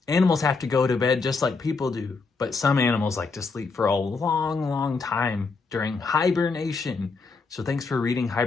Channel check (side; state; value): right; quieter; 4.3 dB